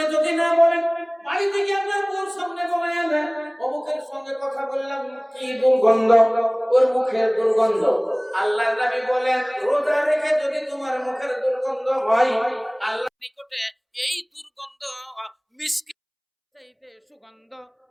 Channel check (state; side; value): identical; both; correlation 1.00